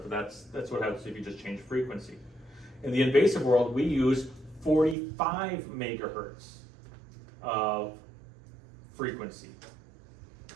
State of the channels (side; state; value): left; drops out; at 5.0 s